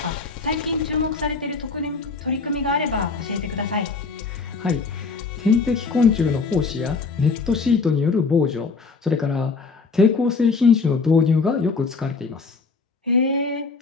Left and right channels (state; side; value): quieter; right; 4.4 dB